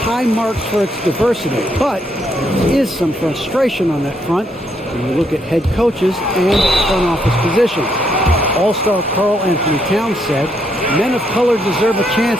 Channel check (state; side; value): normal; both; correlation 0.75